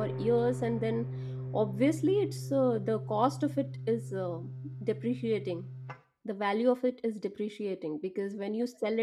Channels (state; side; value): identical; both; correlation 1.00